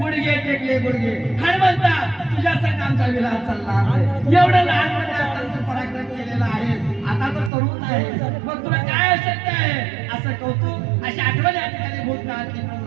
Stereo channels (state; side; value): drops out; left; at 7.5 s